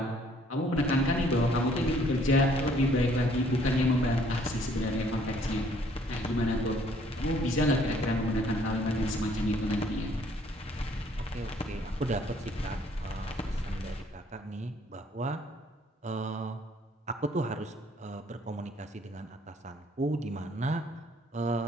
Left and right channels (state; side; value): normal; both; correlation 0.61